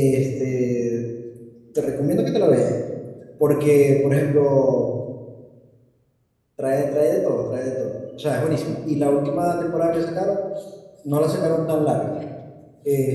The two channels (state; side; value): identical; both; correlation 1.00